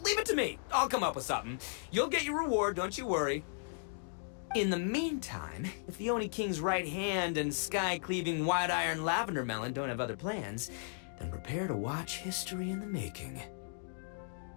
leave it to me. I'll come up with something. You'll get your reward, don't you worry. In the meantime, if the Oni King's right hand and sky-cleaving white iron lavender melon don't have other plans, then prepare to watch history in the making.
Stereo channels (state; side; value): silent; right; digital silence